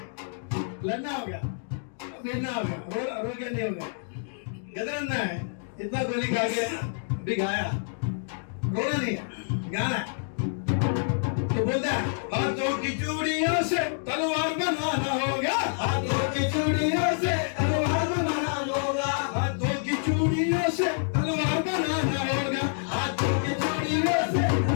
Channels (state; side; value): silent; right; digital silence